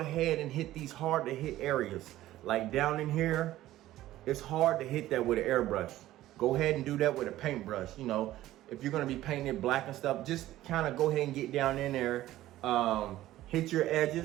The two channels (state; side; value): quieter; left; 14.8 dB